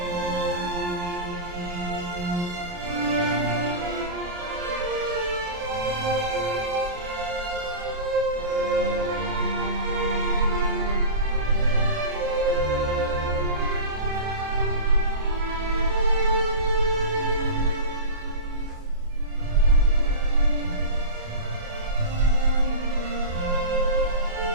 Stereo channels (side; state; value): left; late; 28 ms